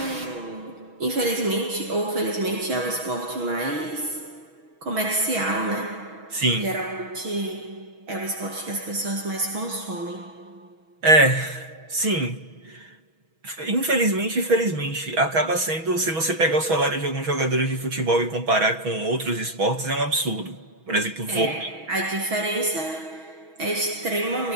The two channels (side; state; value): left; late; 6.2 ms